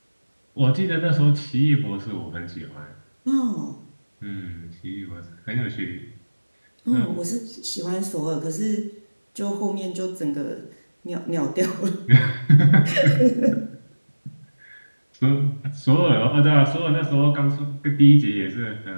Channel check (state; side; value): inverted; both; correlation -1.00